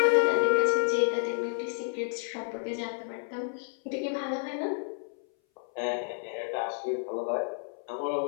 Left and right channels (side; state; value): right; silent; 58 dB below the other